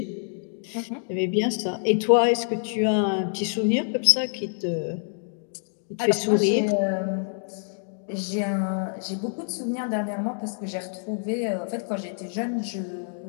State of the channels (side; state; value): right; silent; 61 dB below the other